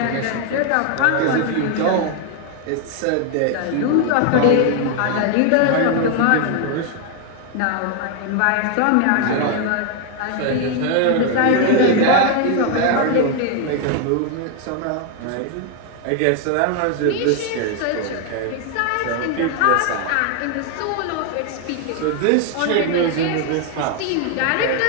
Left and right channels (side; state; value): both; different; correlation 0.00